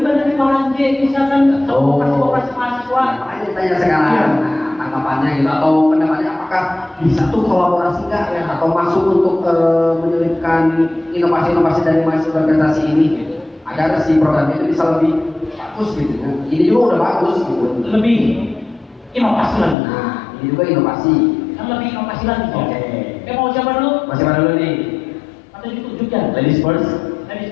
dari Malang J, misalkan koperasi mahasiswa. Makanya ditanya sekarang, nah, tanggapannya gitu atau pendapatnya apakah bisa tuh kolaborasi nggak ya atau masuk untuk menyelipkan inovasi-inovasi dari mahasiswa organisasi ini gitu. Agar si program itu bisa lebih bagus gitu ya. Ini juga udah bagus gitu. Lebih inovasi lagi. Nah, ini juga inovasi. Kan lebih inovasi lagi. Oke. Mau siapa dulu? Masih mana dulu nih? Atau ditunjukkan? Ladies first. Ladies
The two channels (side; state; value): right; drops out; at 19.8 s